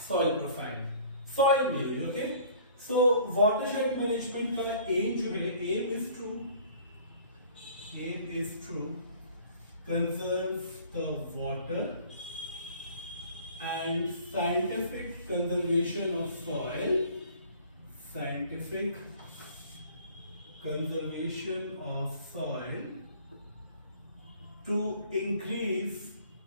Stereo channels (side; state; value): both; inverted; correlation -0.51